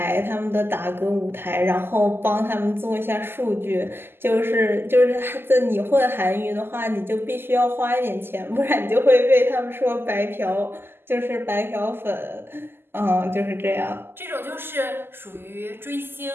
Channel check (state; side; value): late; left; 0.11 ms